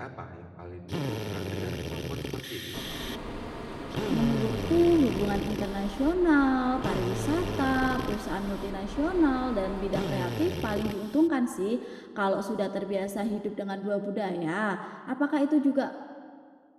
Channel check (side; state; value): both; identical; correlation 1.00